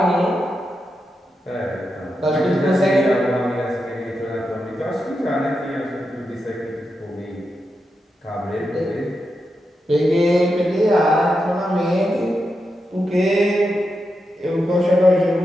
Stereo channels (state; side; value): normal; both; correlation 0.87